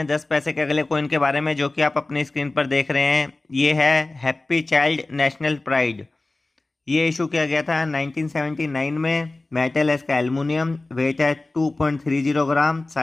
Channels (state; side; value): quieter; right; 3.0 dB